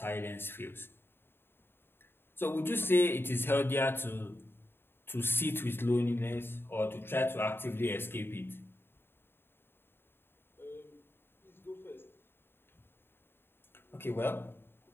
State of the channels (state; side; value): late; right; 0.11 ms